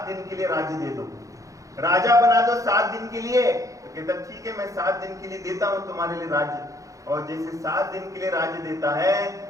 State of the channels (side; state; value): left; late; 0.16 ms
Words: दिन के लिए राज्य दे दो, राजा बना दो 7 दिन के लिए। तो कहता ठीक है मैं 7 दिन के लिए देता हूं तुम्हारे लिए राज्य। और जैसे 7 दिन के लिए राज्य देता है